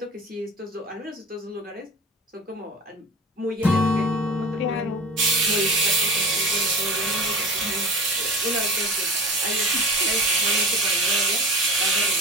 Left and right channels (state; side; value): normal; both; correlation 0.34